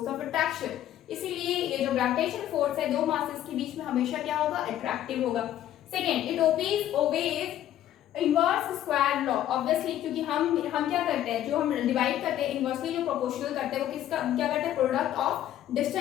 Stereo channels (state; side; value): quieter; right; 12.1 dB